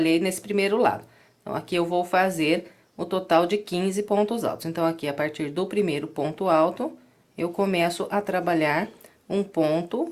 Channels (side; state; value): both; identical; correlation 1.00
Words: nesse primeiro lado. Então, aqui eu vou fazer o total de 15 pontos altos. Então, aqui, a partir do primeiro ponto alto, eu começo a trabalhar um